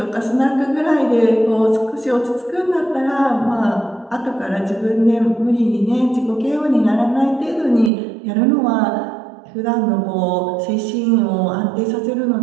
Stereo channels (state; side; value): drops out; left; at 7.9 s